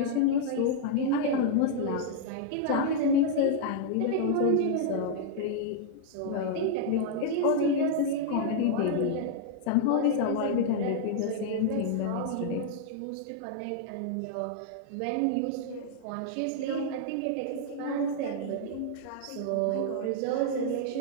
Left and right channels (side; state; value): both; different; correlation -0.01